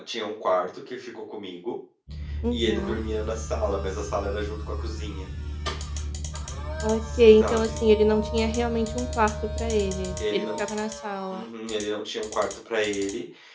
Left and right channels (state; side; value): identical; both; correlation 1.00